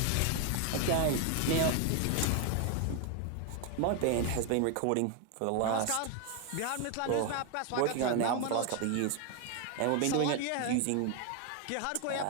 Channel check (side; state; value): both; different; correlation 0.01